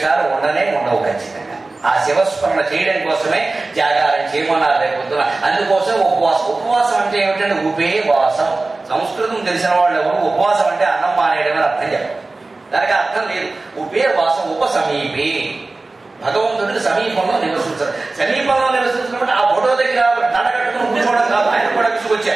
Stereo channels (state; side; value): quieter; left; 3.3 dB